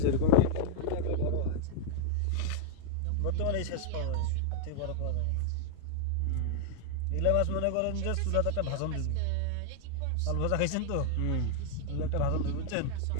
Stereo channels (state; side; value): different; both; correlation 0.00